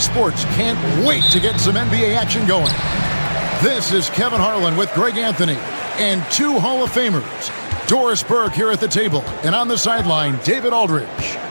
Sports. Can't wait to get some NBA action going. This is Kevin Harlan with Greg Anthony and two Hall of Famers. Doris Burke here at the table, and on the sideline, David Aldridge.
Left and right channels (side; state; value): both; inverted; correlation -1.00